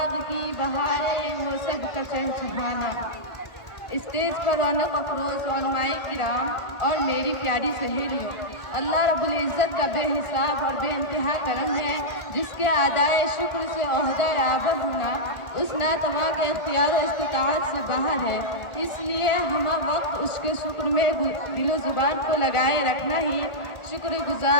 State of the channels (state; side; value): late; right; 1.4 ms